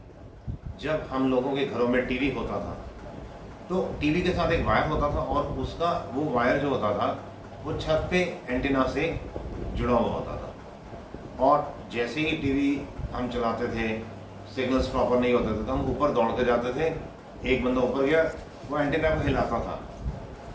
जब हम लोगों के घरों में टीवी होता था तो टीवी के साथ एक वायर होता था और उसका वो वायर जो होता था वो छत पे एंटीना से जुड़ा हुआ होता था। और जैसे ही टीवी हम चलाते थे, सिग्नल्स प्रॉपर नहीं होते थे तो हम ऊपर दौड़ते जाते थे। एक बंदा ऊपर गया, वो एंटीना को हिलाता था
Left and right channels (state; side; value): identical; both; correlation 1.00